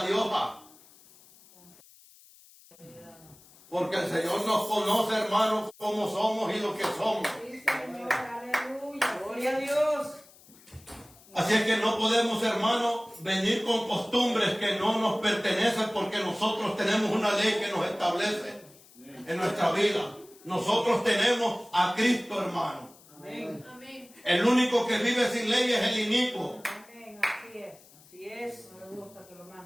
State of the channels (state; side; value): noise; left; hiss, 25 dB below the sound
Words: de hoja. Porque el Señor nos conoce, hermanos, como somos y lo que somos. Sí, Señor. Aleluya. Gloria a Dios. Así es que no podemos, hermanos, venir con costumbres que no nos pertenecen porque nosotros tenemos una ley que nos establece en nuestra vida. Nosotros tenemos a Cristo, hermano. Amén. Amén. El único que vive sin ley es el inicuo. Amén. Así es. Así es. No le gusta que lo